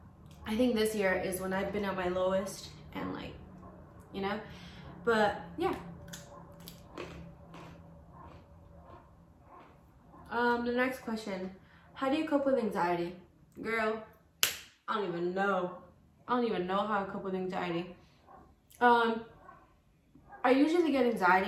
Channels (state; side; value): identical; both; correlation 1.00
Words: I think this year is when I've been at my lowest, and like, you know, but yeah. The next question, how do you cope with anxiety? Girl, I don't even know how I cope with anxiety. I usually get